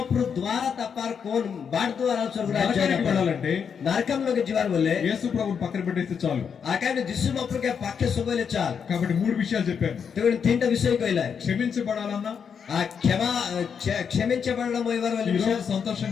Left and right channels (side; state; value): right; quieter; 6.9 dB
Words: ద్వారా తప్పారు కోన్ బాడ్ ద్వారా స్వర్గరాజ్యానికి వెళ్ళాలంటే నరకంలోకి జీవాలు వల్లే యేసు ప్రభుని పక్కన పెట్టేస్తే చాలు. ఆ కైబిల్ దిస్సు మప్రుకే పక్కే సుబోలే చాలు. కాబట్టి 3 విషయాలు చెప్పాను. తెగుని తింట విషయం కోయిలా క్షమించబడాలన్నా, ఆ క్షమించబడడం ఈరోజు